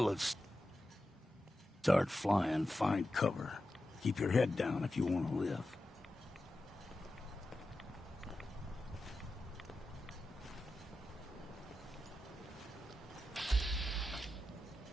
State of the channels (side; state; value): both; normal; correlation 0.91